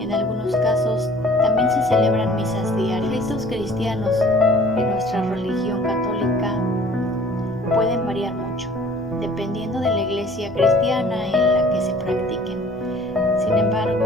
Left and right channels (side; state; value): both; normal; correlation 0.51